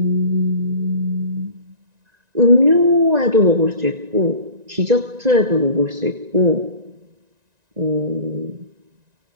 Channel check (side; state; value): left; late; 1.9 ms